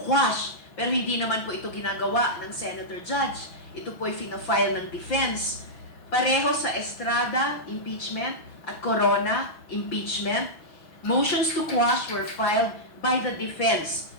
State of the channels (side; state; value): right; late; 6.1 ms